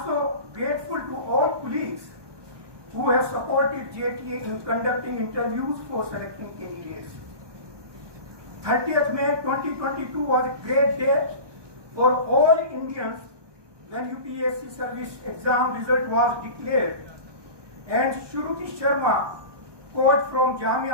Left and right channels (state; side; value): late; left; 1.2 ms